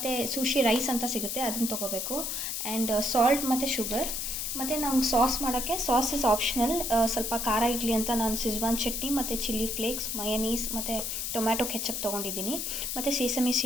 ಸುಶಿ ರೈಸ್ ಅಂತ ಸಿಗುತ್ತೆ, ಅದನ್ನು ತೊಗೋಬೇಕು. ಆ್ಯಂಡ್ ಸಾಲ್ಟ್ ಮತ್ತು ಶುಗರ್. ಮತ್ತು ನಮ್ಗೆ ಸಾಸ್ ಮಾಡೋಕ್ಕೆ ಸಾಸ್ ಇಸ್ ಆಪ್ಷನಲ್. ಸ್ವಲ್ಪ ಖಾರ ಇರಲಿ ಅಂತ ನಾನು ಸಿಜ್ವಾನ್ ಚಟ್ನಿ ಮತ್ತು ಚಿಲ್ಲಿ ಫ್ಲೇಕ್ಸ್, ಮಯನೀಸ್ ಮತ್ತು ಟೊಮ್ಯಾಟೊ ಕೆಚಪ್ ತೊಗೊಂಡಿದ್ದೀನಿ. ಮತ್ತು ಸೀಸಮಿ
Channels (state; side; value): noise; left; hiss, 2 dB below the sound